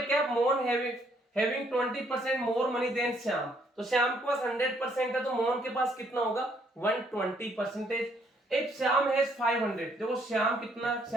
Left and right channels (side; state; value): both; normal; correlation 0.68